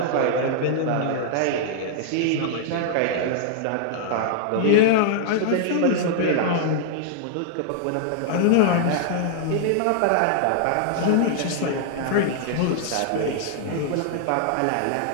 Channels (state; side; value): different; both; correlation -0.01